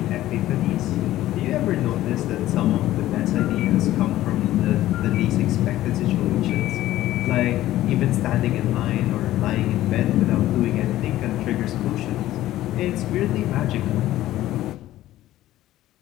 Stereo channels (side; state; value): right; quieter; 14.6 dB